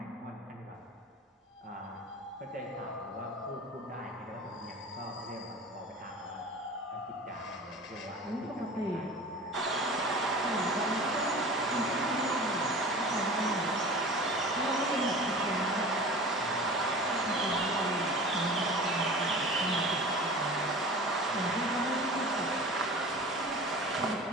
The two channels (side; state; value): both; normal; correlation 0.38